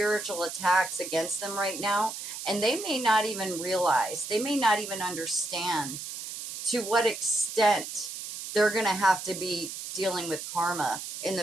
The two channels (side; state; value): right; noise; hiss, 8 dB below the sound